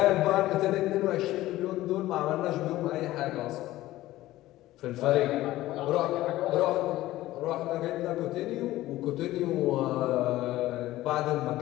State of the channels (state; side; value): quieter; right; 16.1 dB